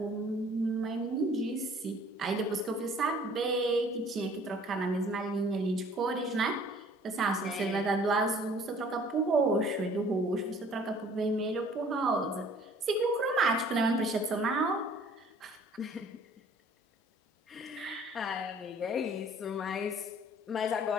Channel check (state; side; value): normal; both; correlation 0.54